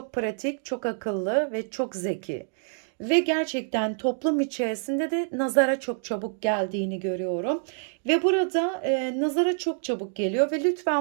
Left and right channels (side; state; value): left; silent; digital silence